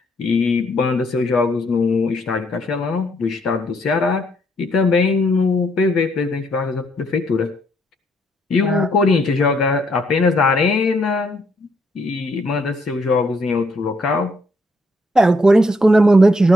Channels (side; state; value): both; normal; correlation 0.72